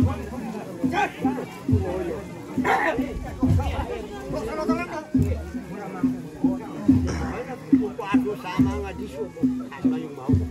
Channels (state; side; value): identical; both; correlation 1.00